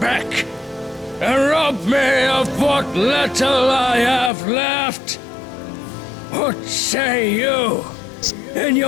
and rob me of what little I have left. What say you in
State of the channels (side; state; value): right; drops out; at 4.3 s